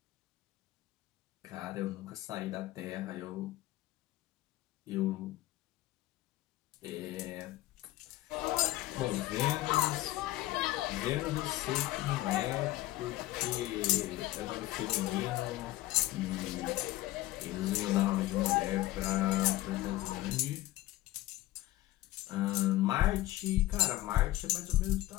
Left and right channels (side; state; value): right; quieter; 16.7 dB